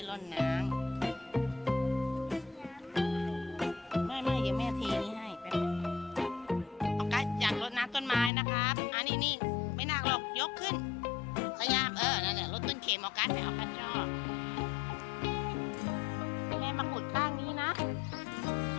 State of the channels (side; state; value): right; drops out; at 8.3 s